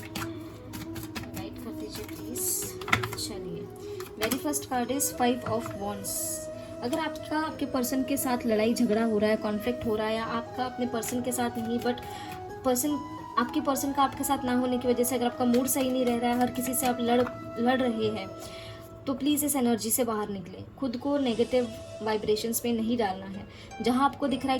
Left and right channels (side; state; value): both; identical; correlation 1.00